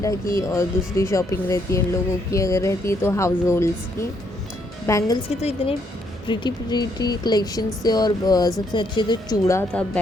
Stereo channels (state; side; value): normal; both; correlation 0.72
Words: की और दूसरी शॉपिंग रहती है इन लोगों की, अगर रहती है तो हाउस होल्ड्स की। बैंगल्स के तो इतने प्रीटी कलेक्शंस थे। और सबसे अच्छे तो चूड़ा था